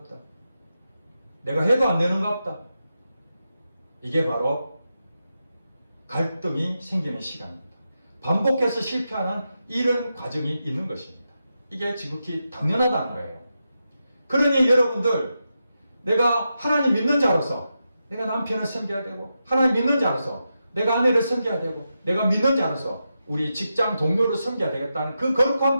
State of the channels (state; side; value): inverted; both; correlation -0.88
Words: 내가 해도 안 되는가 보다. 이게 바로 갈등이 생기는 시간입니다. 반복해서 실패하는 이런 과정이 있는 것입니다. 이게 지극히 당연하다는 거예요. 그러니 여러분들 내가 하나님 믿는 자로서 내가 남편을 섬겨야 되고 하나님 믿는 자로서 내가 아내를 섬겨야 되고 내가 믿는 자로서 우리 직장 동료를 섬겨야 되겠다는 그 거룩한